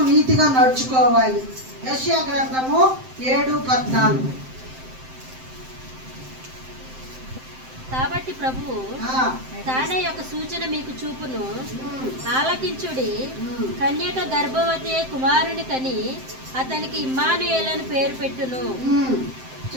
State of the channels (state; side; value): late; left; 7.7 ms